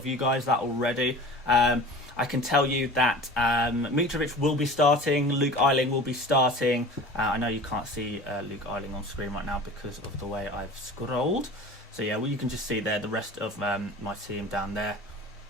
you guys that already. I can tell you that Mitrovic will be starting, Luke Ayling will be starting. I know you can't see Luke Ayling on screen right now because of the way I've scrolled. So yeah, well, you can just see there the rest of my team down there.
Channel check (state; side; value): normal; both; correlation 0.39